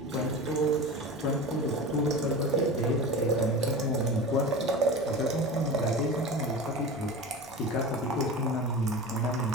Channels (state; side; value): normal; both; correlation 0.30